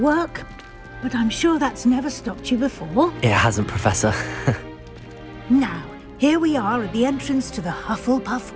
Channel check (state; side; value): identical; both; correlation 1.00